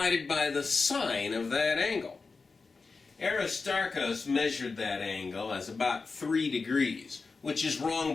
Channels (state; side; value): quieter; right; 4.3 dB